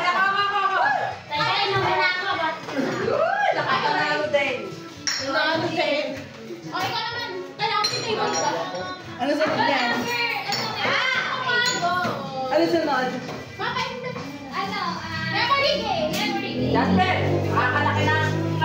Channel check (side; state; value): both; identical; correlation 1.00